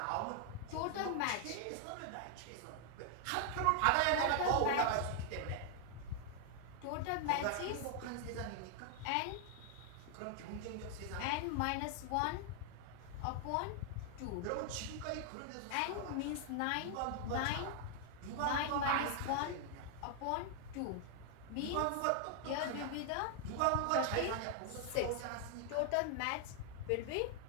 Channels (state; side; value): different; both; correlation 0.00